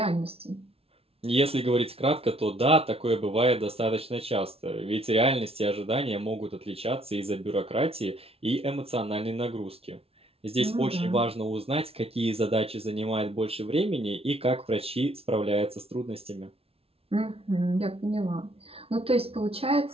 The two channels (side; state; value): left; late; 0.28 ms